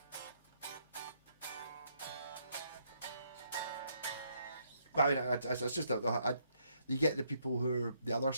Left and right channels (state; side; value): inverted; both; correlation -0.73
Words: I mean, it's just you get the people who are the other